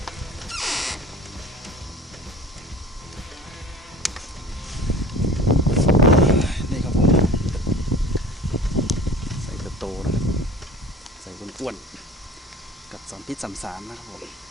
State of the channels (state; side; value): normal; both; correlation 0.43